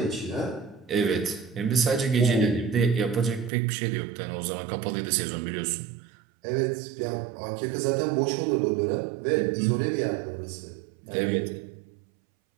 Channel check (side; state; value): left; drops out; at 3.5 s